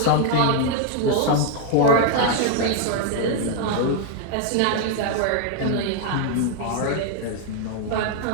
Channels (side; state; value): both; different; correlation 0.00